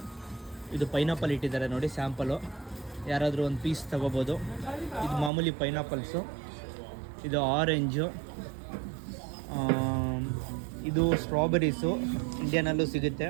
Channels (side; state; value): left; drops out; at 5.3 s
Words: ಇದು ಪೈನಾಪಲ್ ಇಟ್ಟಿದ್ದಾರೆ ನೋಡಿ, ಸ್ಯಾಂಪಲು. ಯಾರಾದರೂ ಒಂದು ಪೀಸ್ ತೊಗೋಬೋದು. ಇದು ಮಾಮೂಲಿ ಪೈನಾಪಲ್ಸು, ಇದು ಆರೆಂಜು, ಇದು ಸ್ಟ್ರಾಬೆರೀಸು, ಇಂಡಿಯಾನಲ್ಲೂ ಸಿಗುತ್ತೆ.